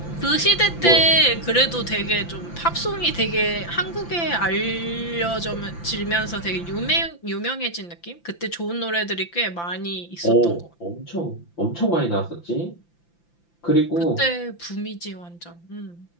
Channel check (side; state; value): right; late; 5.9 ms